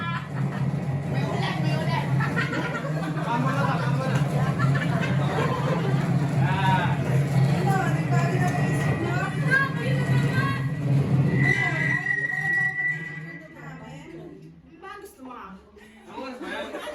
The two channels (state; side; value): identical; both; correlation 1.00